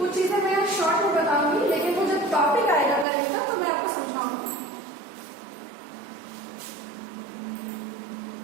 चीजें मैं शॉर्ट में बताऊंगी, लेकिन वो जब टॉपिक आएगा करेगा तो मैं आपको समझाऊंगी।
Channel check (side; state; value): left; drops out; at 3.1 s